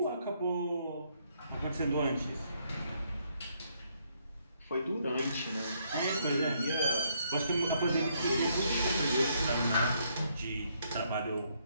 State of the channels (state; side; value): inverted; both; correlation -0.72